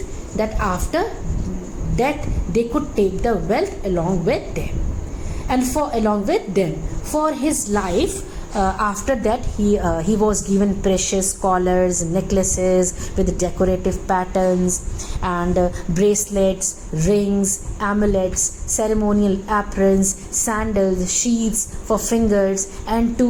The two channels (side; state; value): both; identical; correlation 1.00